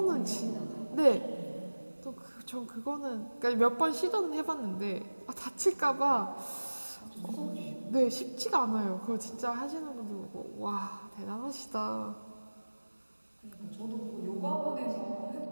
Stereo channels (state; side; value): inverted; both; correlation -1.00